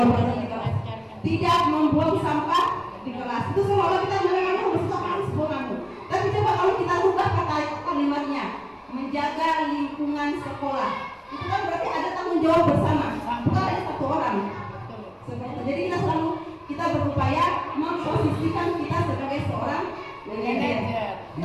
berada di kelas, tidak membuang sampah di kelas. Itu seolah kita menerangkan bersama kamu. Tapi coba kalau kita ubah kata kalimatnya, menjaga lingkungan sekolah, itu kan berarti ada tanggung jawab bersama, bukan hanya satu orang. Jadi kita berupaya memposisikan kita sebagai seorang manajer.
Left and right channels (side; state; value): both; identical; correlation 1.00